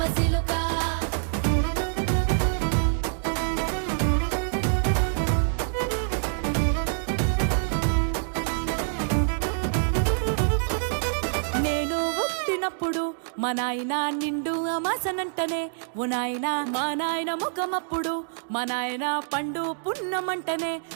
మా నాయన నిండు అమాసనంటనే ఓ నాయన మా నాయన ముఖమప్పుడు మా నాయన పండు పున్నమంటనే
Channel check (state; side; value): silent; left; digital silence